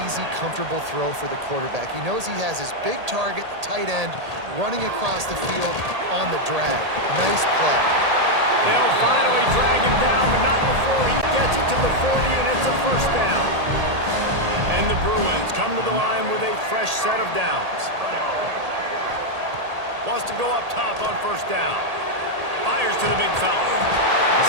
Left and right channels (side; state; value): left; late; 1.8 ms